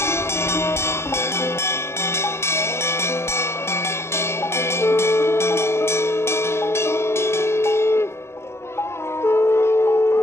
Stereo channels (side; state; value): right; late; 0.13 ms